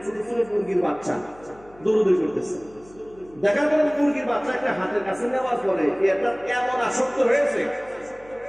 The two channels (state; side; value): noise; left; hum, 25 dB below the sound